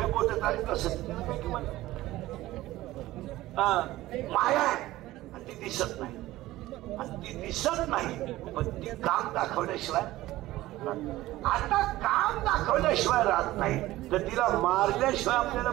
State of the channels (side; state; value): left; quieter; 16.6 dB